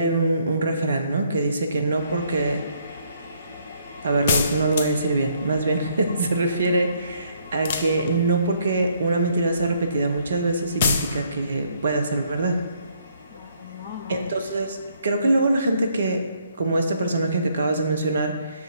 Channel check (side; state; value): both; inverted; correlation -0.68